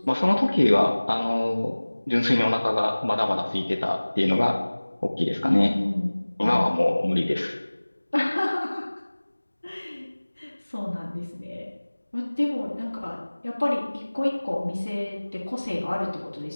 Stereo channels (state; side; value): inverted; both; correlation -1.00